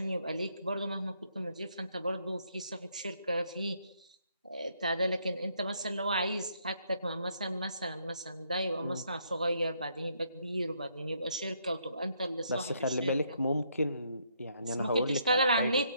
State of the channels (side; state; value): both; inverted; correlation -0.72